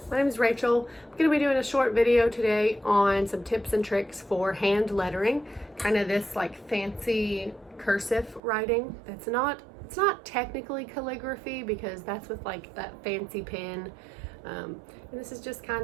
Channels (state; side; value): drops out; left; at 8.4 s